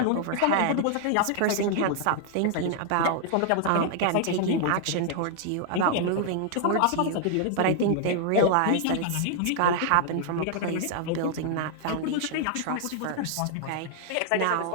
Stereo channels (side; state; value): both; different; correlation 0.00